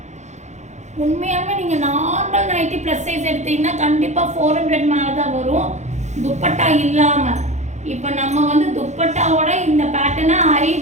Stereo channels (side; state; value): left; late; 0.34 ms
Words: உண்மையாலுமே நீங்கள் நார்மல் நைட்டி ப்ளஸ் சைஸ் எடுத்தீங்கன்னா கண்டிப்பாக 400 மேலே தான் வரும் துப்பட்டா இல்லாமல். இப்போ நம்ம வந்து துப்பட்டாவோட இந்த பேட்டர்னை